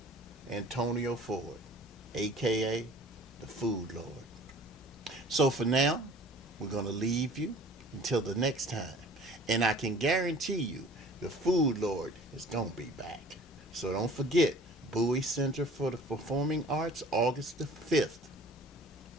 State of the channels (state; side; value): normal; both; correlation 0.48